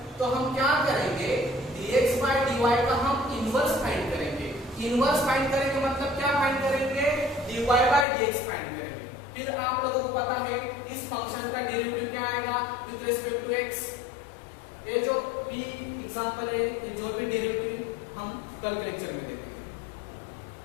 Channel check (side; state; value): right; drops out; at 8.1 s